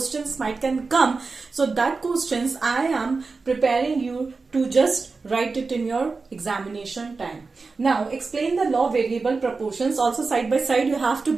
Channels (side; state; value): left; quieter; 4.2 dB